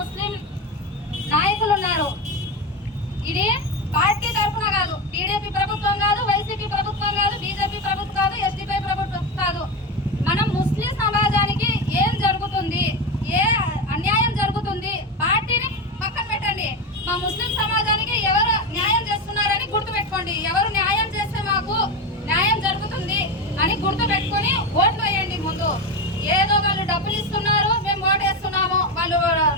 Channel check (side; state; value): both; normal; correlation 0.17